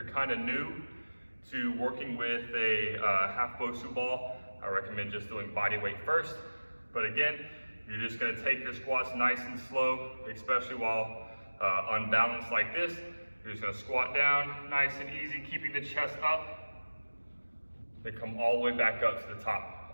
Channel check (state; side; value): inverted; both; correlation -1.00